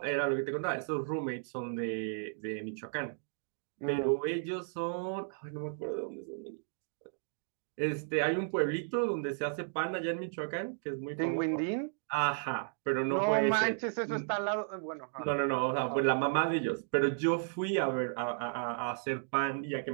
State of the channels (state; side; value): silent; left; digital silence